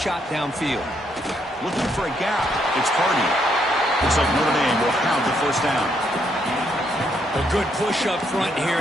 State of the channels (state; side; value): normal; both; correlation 0.74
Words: downfield. Looking for a gap. It's Hardy. Looks like Notre Dame will have the first down. A good push up front here